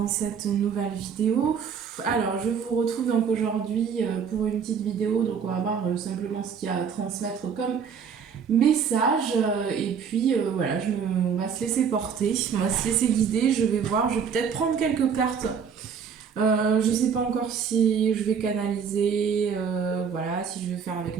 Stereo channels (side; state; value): left; quieter; 6.8 dB